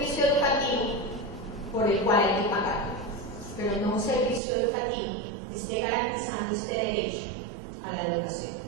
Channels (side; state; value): left; drops out; at 4.4 s